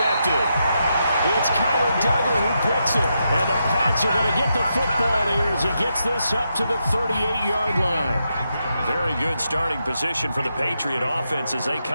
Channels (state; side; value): inverted; both; correlation -0.84